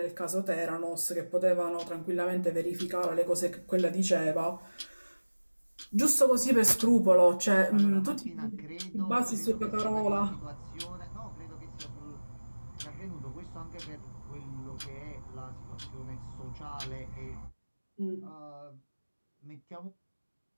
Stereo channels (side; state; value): both; inverted; correlation -1.00